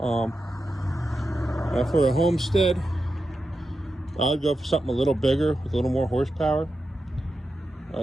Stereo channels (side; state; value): both; normal; correlation 0.89